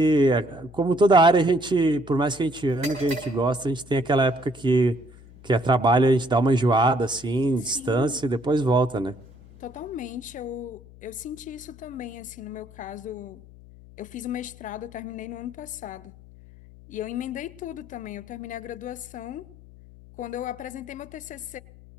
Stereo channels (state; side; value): noise; left; hum, 21 dB below the sound